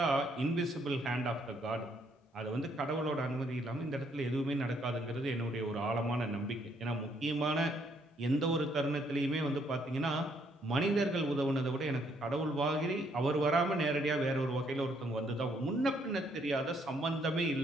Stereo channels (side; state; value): both; normal; correlation 0.69